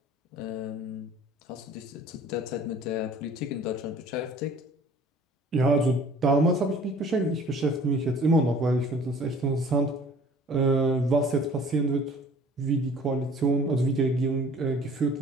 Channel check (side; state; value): both; normal; correlation 0.50